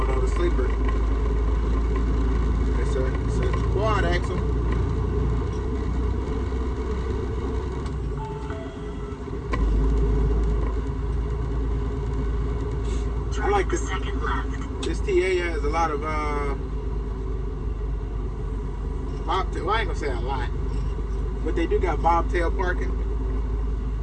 though, the sleeper. It's a quad axle. I like this. This TA has a lot of bobtail. Well, I ain't gonna say a lot, but they do got bobtail parking,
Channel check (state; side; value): identical; both; correlation 1.00